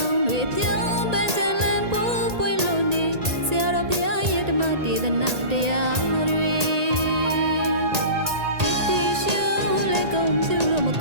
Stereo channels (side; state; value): left; late; 1.8 ms